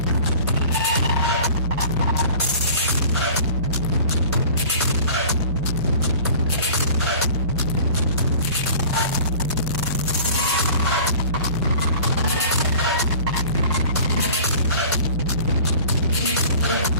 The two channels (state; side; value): inverted; both; correlation -0.44